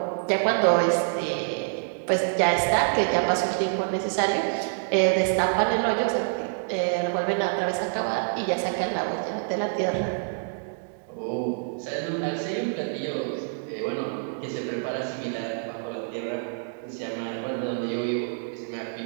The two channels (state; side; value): silent; left; digital silence